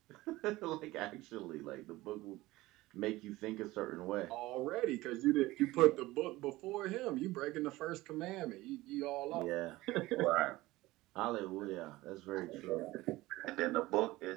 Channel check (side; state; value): left; quieter; 18.7 dB